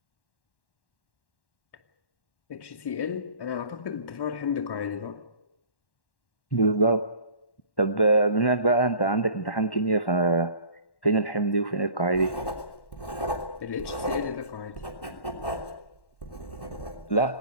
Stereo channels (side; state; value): right; late; 1.1 ms